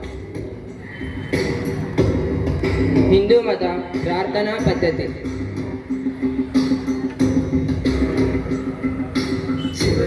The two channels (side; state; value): both; identical; correlation 1.00